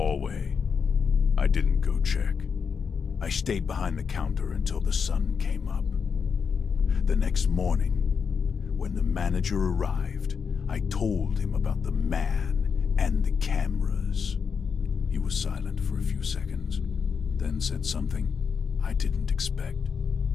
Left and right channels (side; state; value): right; quieter; 6.1 dB